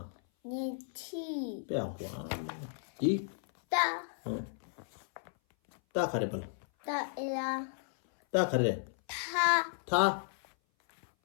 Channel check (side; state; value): right; silent; 55 dB below the other